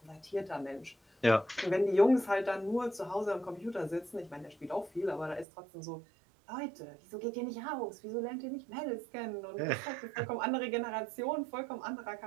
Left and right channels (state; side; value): drops out; left; at 5.5 s